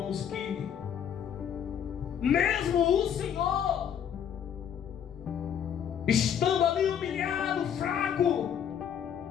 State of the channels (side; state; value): right; quieter; 8.7 dB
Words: que mesmo o Senhor, estando ali humilhado, fraco,